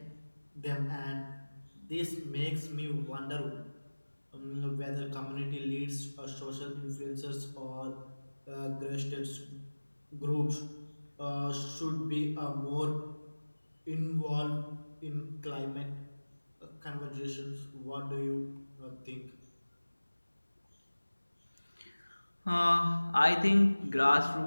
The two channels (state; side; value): inverted; both; correlation -1.00